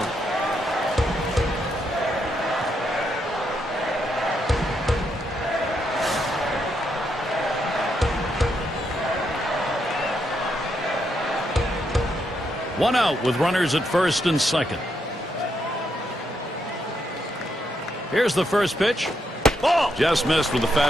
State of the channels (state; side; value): normal; both; correlation 0.79